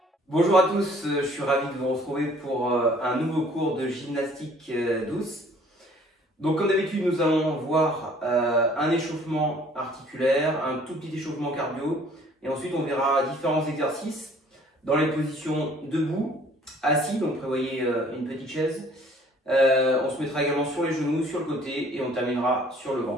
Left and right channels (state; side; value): normal; both; correlation 0.56